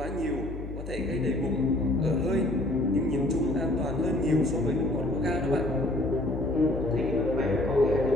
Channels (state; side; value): noise; left; hum, 9 dB below the sound